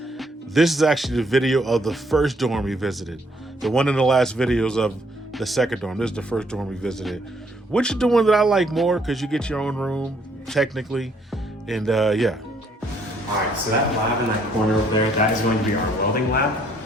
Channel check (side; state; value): both; normal; correlation 0.68